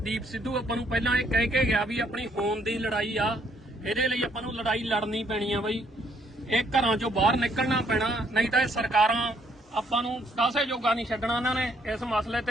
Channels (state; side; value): normal; both; correlation 0.68